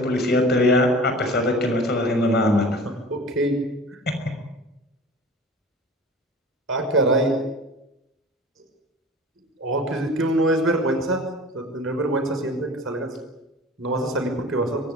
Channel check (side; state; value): both; normal; correlation 0.40